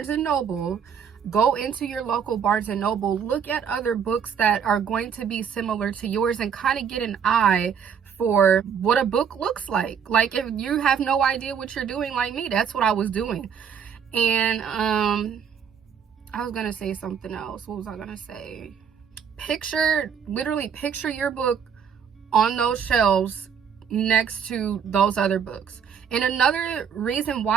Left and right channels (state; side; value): quieter; left; 7.4 dB